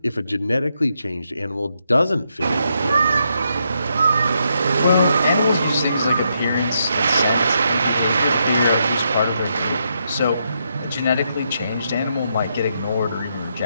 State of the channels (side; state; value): both; inverted; correlation -0.79